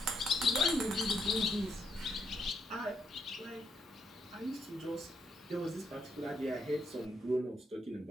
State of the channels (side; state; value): both; normal; correlation 0.76